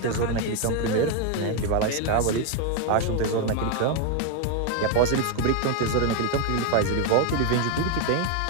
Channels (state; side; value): different; both; correlation 0.01